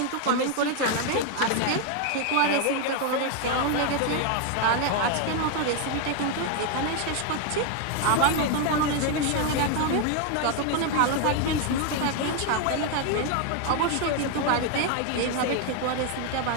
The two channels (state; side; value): different; both; correlation 0.01